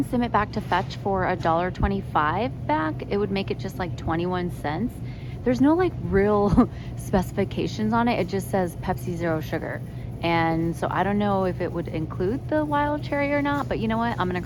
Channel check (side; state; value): both; identical; correlation 1.00